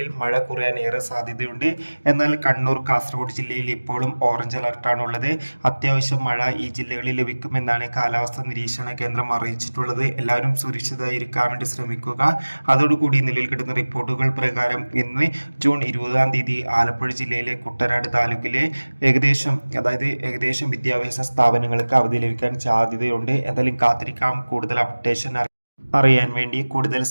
മഴ കുറയാൻ ഏറെ സാധ്യതയുണ്ട്. എന്നാൽ കണ്ണൂർ, കാസർഗോഡ് ജില്ലയിൽ ഇപ്പോഴും ഓറഞ്ച് അലർട്ടാണുള്ളത്. അത്യാവശ്യം മഴ ഈ ജില്ലകളിൽ ലഭിക്കുമെന്നാണ് കാലാവസ്ഥാ നിരീക്ഷണ കേന്ദ്രം അറിയിച്ചിട്ടുള്ളത്. എല്ലാവരും സുരക്ഷിതരായിരിക്കാൻ വേണ്ടി ശ്രമിക്കുക. അതോടുകൂടി നിലവിൽ കിട്ടുന്ന റിപ്പോർട്ടുകൾ പ്രകാരം ഇന്ന് ജൂൺ 20-ാം തീയതി ആലപ്പുഴ ജില്ലയിലെ കുട്ടനാട് താലൂക്കിലെ ഏകദേശം വിദ്യാഭ്യാസ സ്ഥാപനങ്ങൾക്ക് അവധി ലഭിക്കാൻ സാധ്യതയുണ്ട്. എന്തായാലും കാത്തിരിക്കാം. കൂടുതൽ അപ്ഡേഷൻ അറിയാൻ വേണ്ടി കൂടുതൽ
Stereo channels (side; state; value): both; inverted; correlation -1.00